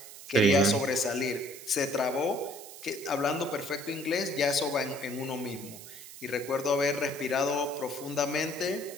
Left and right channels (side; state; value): right; noise; hiss, 15 dB below the sound